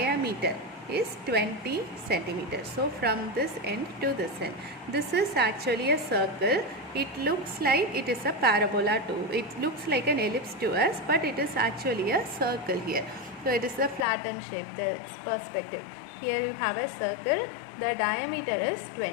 is 20 centimeters. So from this end to this end, this is actually a circle. It looks like it is a parabola too. It looks like an ellipse to us, but it is actually a circle here. So it is a flattened shape, the perspective. Here you have a circle. The diameter is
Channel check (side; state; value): right; drops out; at 14.1 s